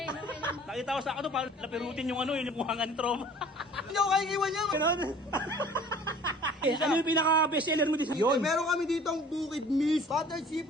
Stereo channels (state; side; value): normal; both; correlation 0.49